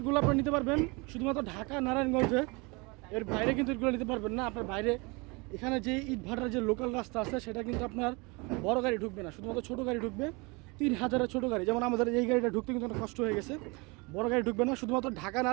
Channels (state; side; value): quieter; left; 27.6 dB